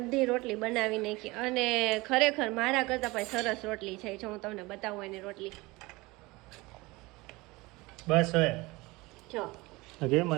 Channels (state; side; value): quieter; left; 22.5 dB